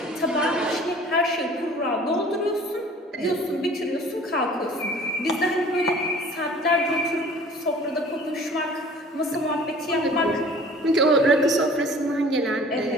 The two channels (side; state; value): both; normal; correlation 0.48